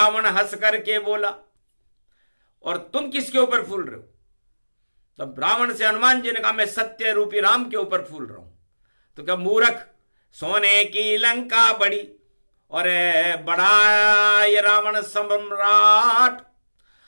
हंस करके बोला, और तुम किसके ऊपर फूल रहे हो? तब रावण से हनुमान जी ने कहा, मैं सत्य रूपी राम के ऊपर फूल रहा हूं। तो क्या मूर्ख, सोने की लंका बड़ी और बड़ा ये रावण सम्राट,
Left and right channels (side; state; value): both; inverted; correlation -1.00